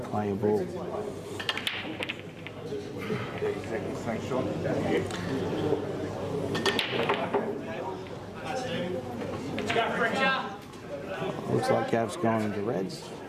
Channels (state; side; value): identical; both; correlation 1.00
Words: a ball. 30 seconds, thanks Sean. Let's go, FRECCIA. Looks like Gav's gone into reds.